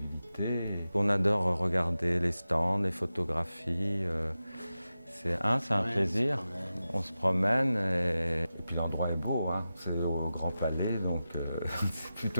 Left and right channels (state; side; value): inverted; both; correlation -0.93